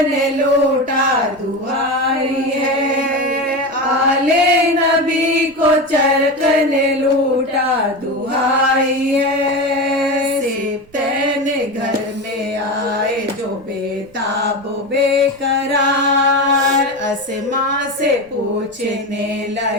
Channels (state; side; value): noise; right; rumble, 28 dB below the sound